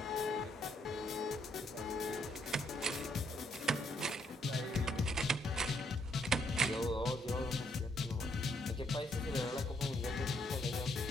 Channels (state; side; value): normal; both; correlation 0.72